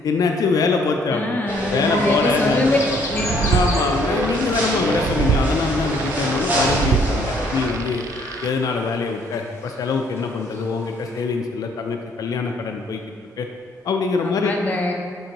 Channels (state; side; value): normal; both; correlation 0.64